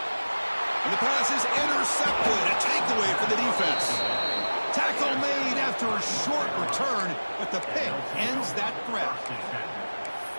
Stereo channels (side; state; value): both; inverted; correlation -1.00